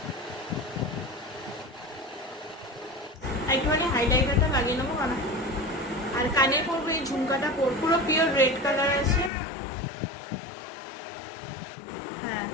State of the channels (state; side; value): drops out; right; at 9.3 s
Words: একটুখানি হাইলাইটারটা লাগিয়ে নেবো কারণ, আর কানে পরবো এই ঝুমকাটা পরবো, পুরো পিওর রেড কালার আছে। হ্যাঁ,